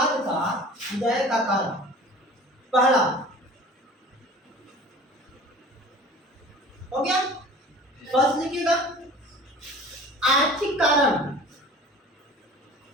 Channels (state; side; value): normal; both; correlation 0.42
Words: का उदय का कारण। पहला हो गया, फर्स्ट लिखिएगा आर्थिक कारण।